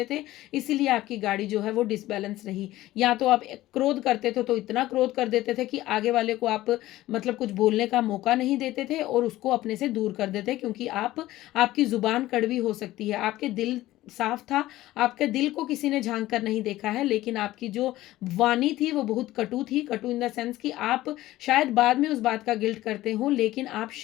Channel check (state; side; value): quieter; right; 16.1 dB